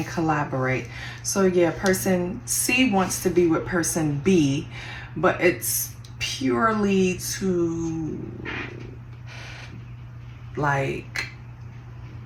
collaborate. So yeah, person C wants to be with person B, but it's purely to like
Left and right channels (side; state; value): both; identical; correlation 1.00